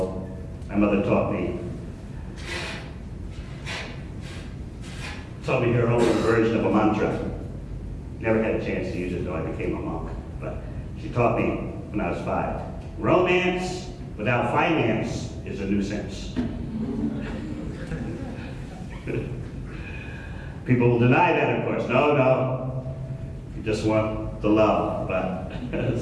my mother taught me her own version of a mantra. Never had a chance to use it though I became a monk, but she taught me when I was 5. Romance without finance is a nuisance. People will deny that, of course. No, you just want the love, but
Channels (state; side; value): identical; both; correlation 1.00